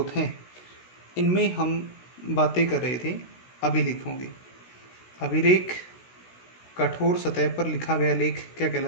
हैं इनमें हम बातें कर रहे थे अभिलेखों की। अभिलेख कठोर सतह पर लिखा गया लेख क्या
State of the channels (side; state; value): right; late; 16 ms